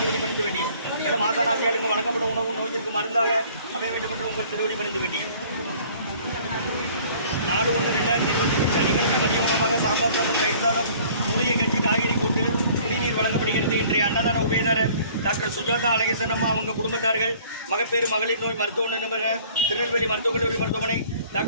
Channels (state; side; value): inverted; both; correlation -0.53